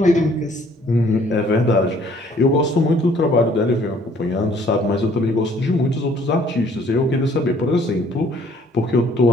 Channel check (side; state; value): both; normal; correlation 0.60